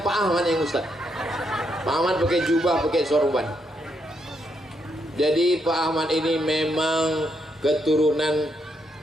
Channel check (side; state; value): both; normal; correlation 0.78